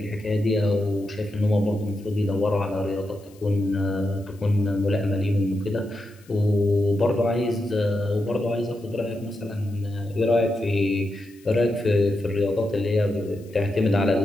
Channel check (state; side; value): noise; left; hiss, 28 dB below the sound